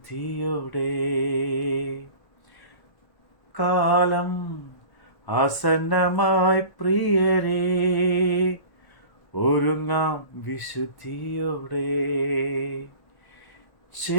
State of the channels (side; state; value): right; late; 1.1 ms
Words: കാലം ആസന്നമായി പ്രിയരേ, ഒരുങ്ങാം വിശുദ്ധിയോടെ.